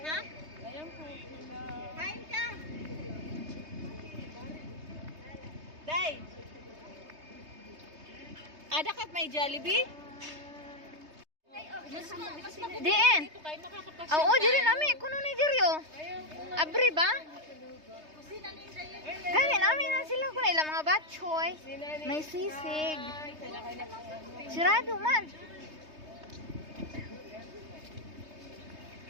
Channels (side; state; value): left; late; 3.2 ms